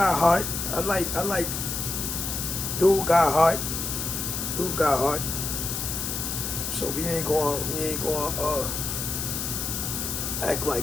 heart. I like dude got heart. So we ain't going act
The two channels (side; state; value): left; noise; hiss, 3 dB below the sound